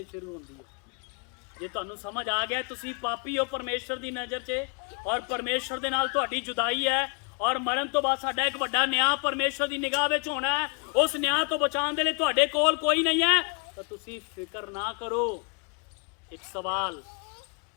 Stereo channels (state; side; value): quieter; right; 36.7 dB